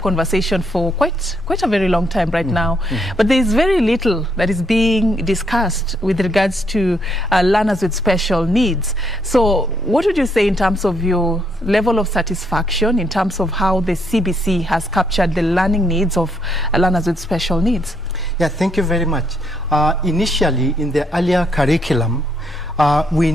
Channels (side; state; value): both; normal; correlation 0.74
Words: for quite a very long time right now, but there is very little that is being discussed with regards to learners with special needs. So what would you say in terms of your level of satisfaction, in terms of how the CBC has captured the learning needs of learners with special needs? Yeah, thank you very much. Initially, in the earlier curriculum, we